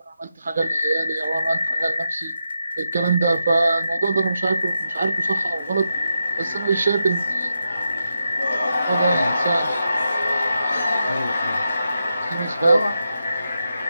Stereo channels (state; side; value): inverted; both; correlation -0.86